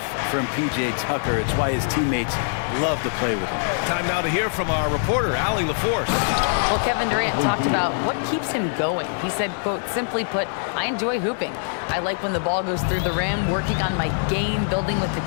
from P.J. Tucker. It's why his teammates love to play with him. Time now to hear from our reporter, Allie LaForce. Well, Kevin Durant talked about what keeps him going. He said, quote, simply put, I enjoy hooping. I like when the ball goes through the rim, working on my game, building with the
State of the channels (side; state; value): right; silent; digital silence